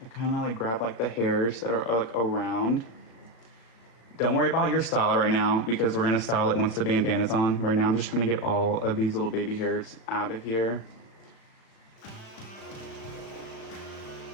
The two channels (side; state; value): right; late; 36 ms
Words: I kind of like grab like the hairs that are like around. Don't worry about your style right now because we're gonna style it once the bandana's on. Right now I'm just trying to get all of these little baby hairs out of here.